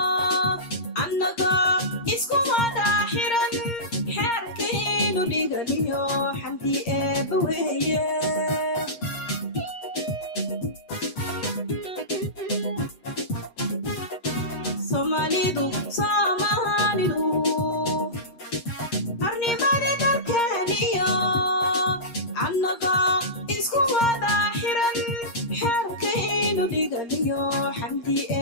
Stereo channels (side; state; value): right; late; 7.8 ms